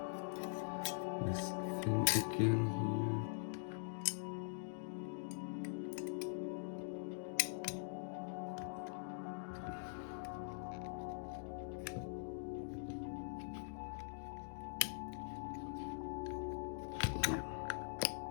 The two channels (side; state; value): right; silent; digital silence